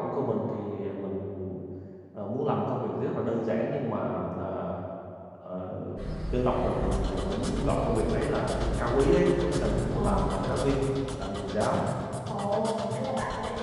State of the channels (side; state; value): both; identical; correlation 1.00